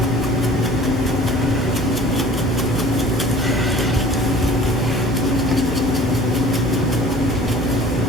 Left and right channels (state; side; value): normal; both; correlation 0.46